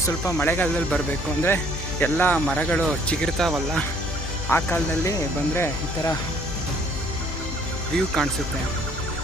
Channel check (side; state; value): left; noise; hum, 7 dB below the sound